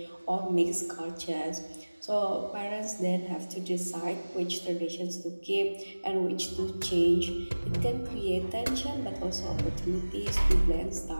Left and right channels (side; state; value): both; inverted; correlation -1.00